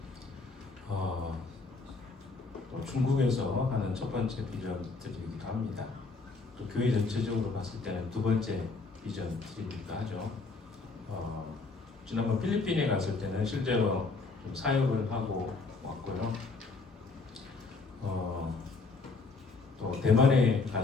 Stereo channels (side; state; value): right; quieter; 4.0 dB